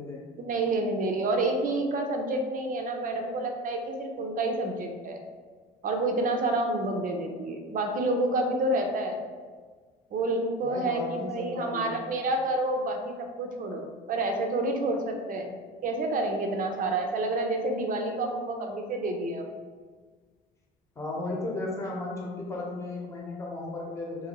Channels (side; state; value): both; normal; correlation 0.28